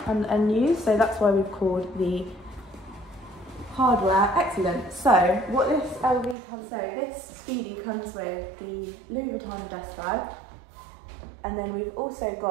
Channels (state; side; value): drops out; left; at 6.4 s